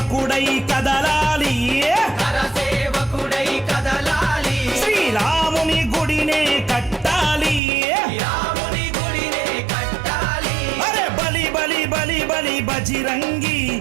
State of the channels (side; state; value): left; drops out; at 7.6 s